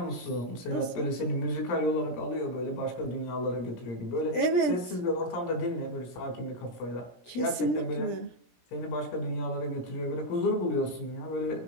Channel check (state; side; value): late; right; 17 ms